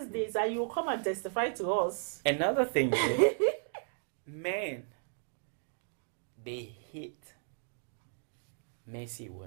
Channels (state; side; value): silent; left; digital silence